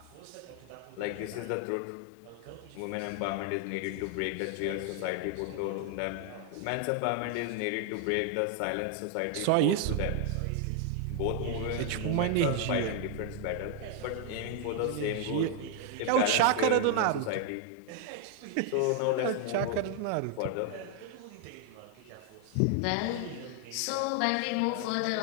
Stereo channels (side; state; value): both; different; correlation 0.00